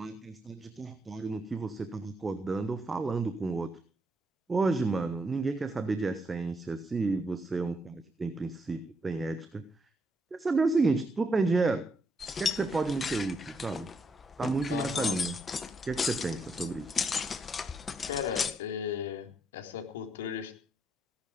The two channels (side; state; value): both; normal; correlation 0.78